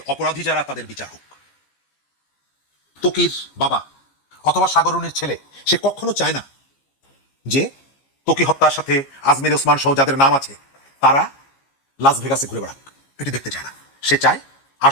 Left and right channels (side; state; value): right; late; 15 ms